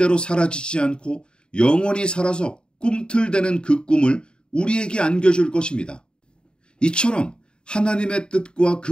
사라지지 않고 영원히 살아서 꿈틀대는 그 꿈을 우리에게 안겨줄 것입니다. 이처럼 하나님의 뜻과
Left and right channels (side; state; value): right; late; 0.050 ms